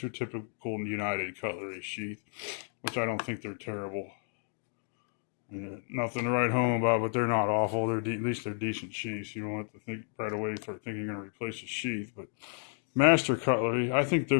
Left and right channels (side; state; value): right; silent; digital silence